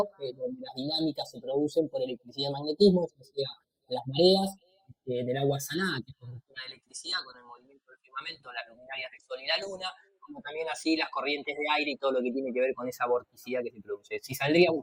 donde las dinámicas se producen por electricidad y magnetismo, eso sea las mareas del agua salada, que es conductora de electricidad con el movimiento del firmamento, las luminarias del Sol y la Luna, como también así las corrientes de aire y todo lo que tiene que ver con esa vorticidad que se produce. Si saldría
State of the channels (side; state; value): both; identical; correlation 1.00